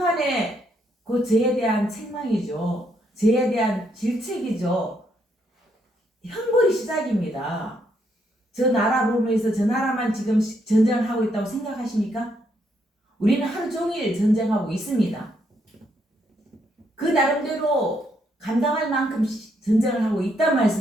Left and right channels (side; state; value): both; normal; correlation 0.75